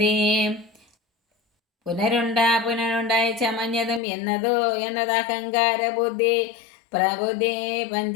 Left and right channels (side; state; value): right; drops out; at 4.0 s